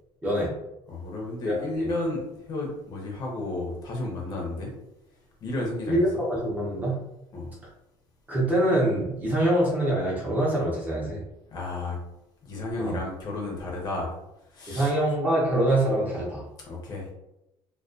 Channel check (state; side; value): normal; both; correlation 0.60